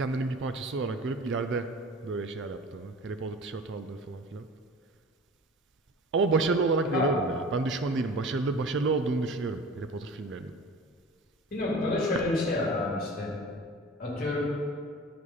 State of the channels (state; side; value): normal; both; correlation 0.39